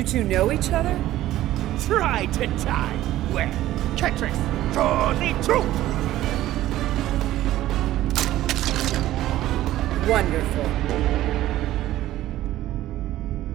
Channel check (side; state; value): left; quieter; 14.5 dB